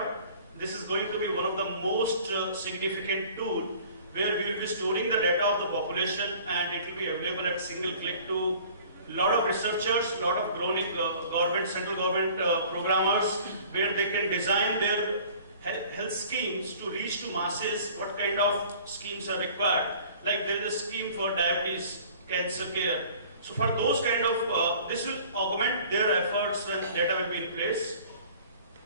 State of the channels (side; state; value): both; inverted; correlation -0.49